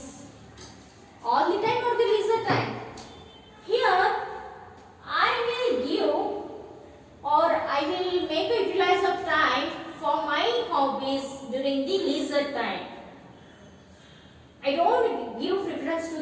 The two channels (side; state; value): both; identical; correlation 1.00